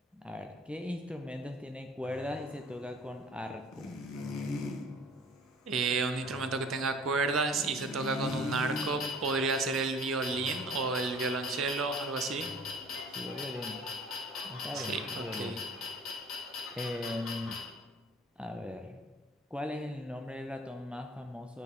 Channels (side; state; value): both; normal; correlation 0.49